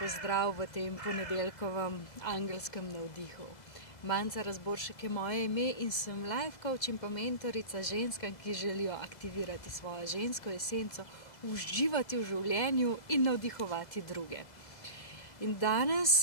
v tem ponedeljkovem angelskem navdihu. Manca Razboršek je moje ime in sem life coach in pa mentorica ženskam, ki želijo aktivirati svojo žensko esenco, uživati v življenju in navdihovati druge. In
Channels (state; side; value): late; right; 2.0 ms